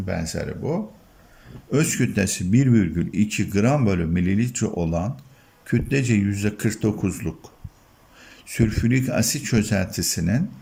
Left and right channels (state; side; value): identical; both; correlation 1.00